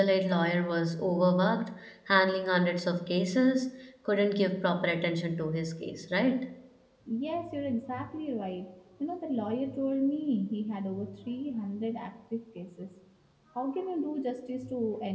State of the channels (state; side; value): identical; both; correlation 1.00